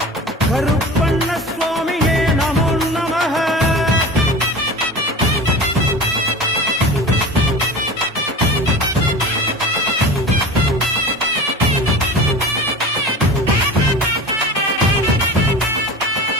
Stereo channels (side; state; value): both; normal; correlation 0.34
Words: கருப்பண்ண சுவாமியே நமோ நமः